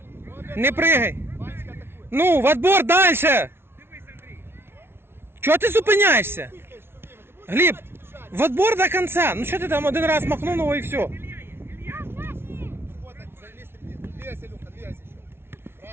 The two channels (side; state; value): left; late; 0.12 ms